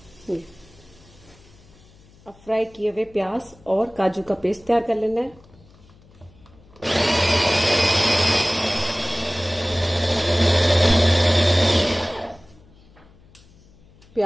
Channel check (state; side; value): noise; left; hum, 27 dB below the sound